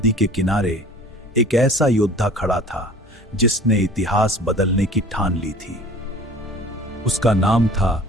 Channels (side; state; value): both; normal; correlation 0.46